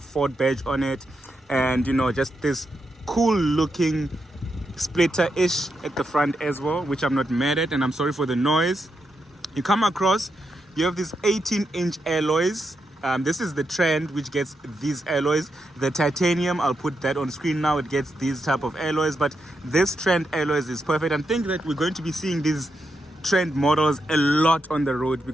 badge on it, and just this cool looking splitter-ish at the front as well, which I'm not mad at, and I'm sorry for the noise. You come across, you have these 18-inch alloys. This is the trend which gets these alloys. The titanium, I'll put that on screen now, it gets these type of alloys, but this trend alloys is perfect. And I think that we're going to be seeing these trend models a lot on the road,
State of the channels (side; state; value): both; normal; correlation 0.84